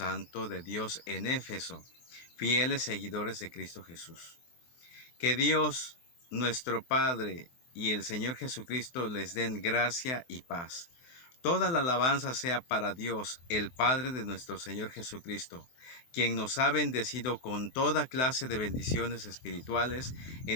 de Dios en Éfeso, fieles seguidores de Cristo Jesús. Que Dios, nuestro Padre, y el Señor Jesucristo les den gracia y paz. Toda la alabanza sea para Dios, el Padre de nuestro Señor Jesucristo, quien nos ha bendecido con toda clase de bendiciones espirituales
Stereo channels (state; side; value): late; right; 23 ms